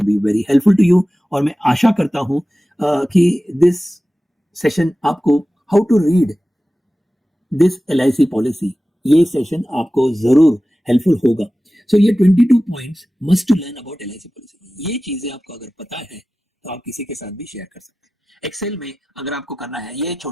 be very helpful to you. और मैं आशा करता हूं कि दिस सेशन आपको how to read this LIC policy, ये सेशन आपको जरूर हेल्पफुल होगा। सो ये 22 points must to learn about LIC policy, ये चीजें आपको अगर पता है तो आप किसी के साथ भी शेयर कर सकते हैं। एक्सेल में अगर आपको करना है ये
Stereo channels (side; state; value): both; normal; correlation 0.95